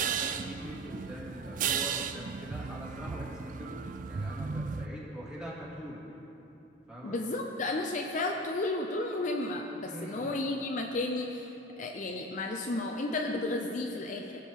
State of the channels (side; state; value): both; normal; correlation 0.33